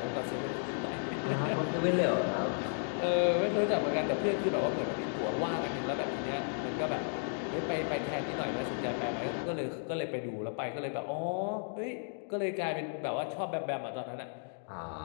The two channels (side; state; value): right; silent; digital silence